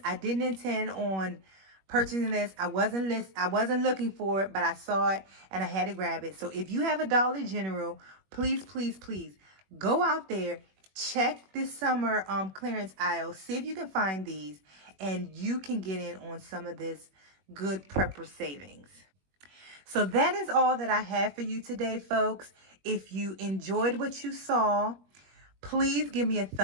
I didn't intend on purchasing this. I wasn't looking for it, but I saw it and I had to grab it. So if you have a Dollar General, please go out there, check this summer clearance aisle, see if you can find these, and you can get in on some of this good prepper savings. So that is all that I have for you today, folks. If you enjoyed what you saw, please give me a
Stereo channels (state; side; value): late; left; 21 ms